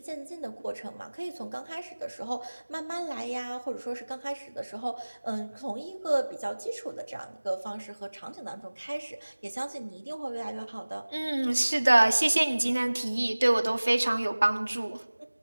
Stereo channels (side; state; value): both; inverted; correlation -1.00